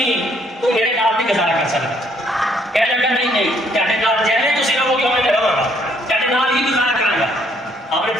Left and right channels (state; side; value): normal; both; correlation 0.67